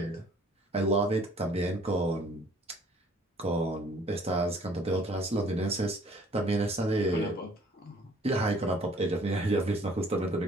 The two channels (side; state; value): both; normal; correlation 0.57